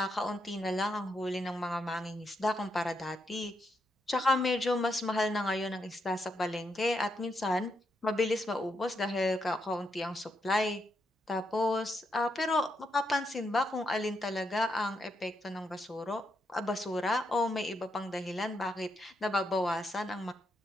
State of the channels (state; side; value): normal; both; correlation 0.80